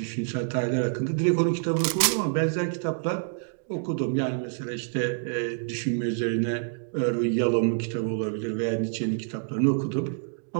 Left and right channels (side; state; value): left; silent; digital silence